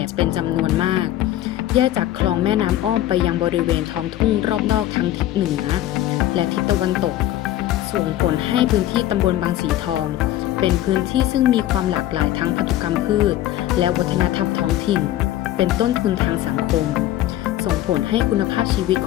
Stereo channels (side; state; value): right; quieter; 13.5 dB